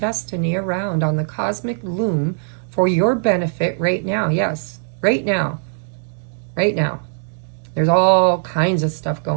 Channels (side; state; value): left; silent; digital silence